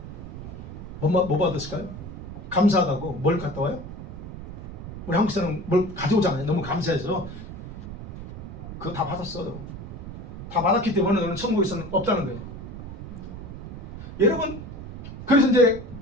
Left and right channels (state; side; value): noise; right; rumble, 10 dB below the sound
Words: 뭐 받았을까요? 감사하다고 뭘 갖다 와요? 우리 한국 사람은 뭘 가져오잖아요. 너무 감사해서 그거 다 받았어. 다 받았기 때문에 너는 천국에서는 없다는 거예요. 여러분 그래서 이제